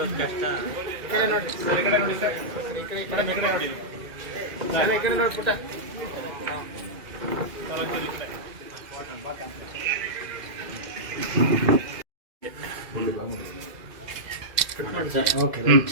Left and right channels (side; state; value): left; late; 2.4 ms